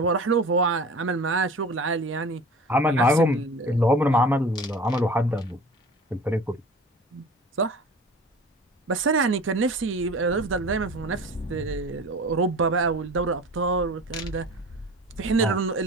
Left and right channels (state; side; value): normal; both; correlation 0.39